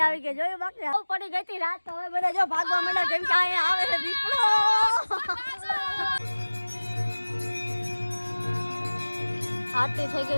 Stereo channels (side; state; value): both; inverted; correlation -1.00